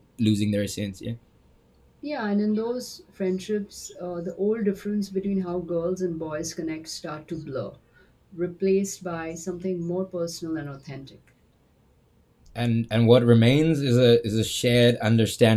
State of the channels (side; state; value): both; identical; correlation 1.00